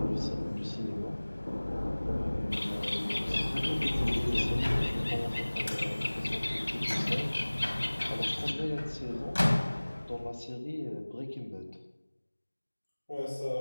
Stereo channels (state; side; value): inverted; both; correlation -1.00